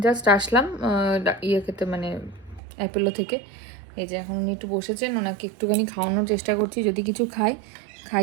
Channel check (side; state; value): left; drops out; at 2.6 s